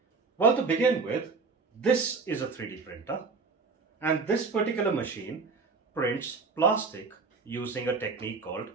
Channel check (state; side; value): quieter; left; 4.5 dB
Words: Well, to begin with, this is a 3D printer, and this particular machine prints plastic using a technique called